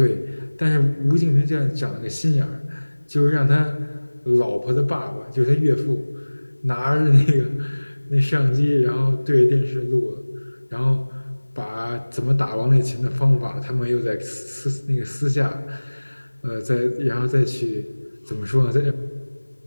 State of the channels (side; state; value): both; inverted; correlation -1.00